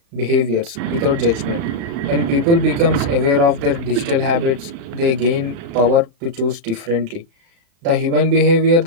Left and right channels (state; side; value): late; left; 35 ms